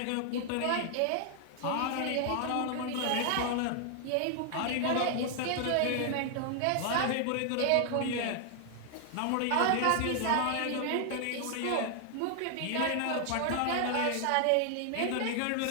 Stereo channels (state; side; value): different; both; correlation 0.00